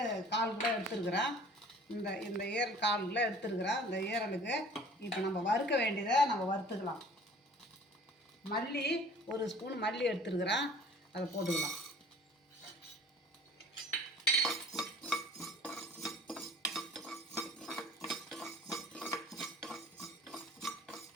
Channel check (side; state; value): both; normal; correlation 0.49